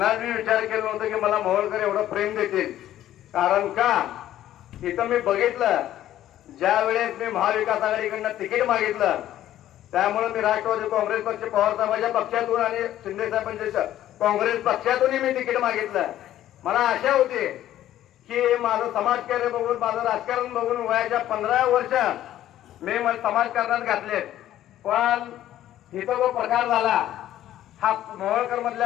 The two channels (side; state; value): right; quieter; 12.7 dB